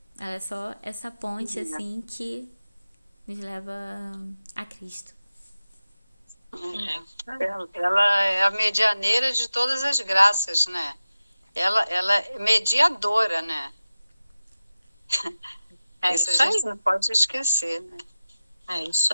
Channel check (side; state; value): both; inverted; correlation -0.93